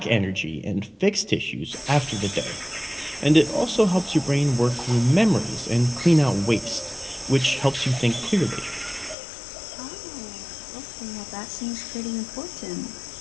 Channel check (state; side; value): drops out; right; at 9.2 s